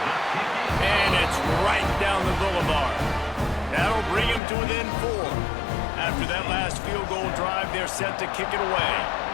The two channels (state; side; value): drops out; right; at 4.4 s